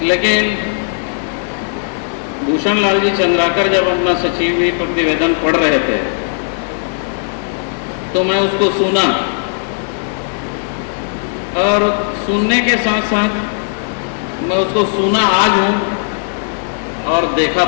लेकिन भूषण लाल जी चंद्राकर जब अपना सचिव प्रतिवेदन पढ़ रहे थे तो मैं उसको सुना, और सुनने के साथ साथ मैं उसको सुना आज हूँ और देखा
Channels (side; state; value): right; silent; digital silence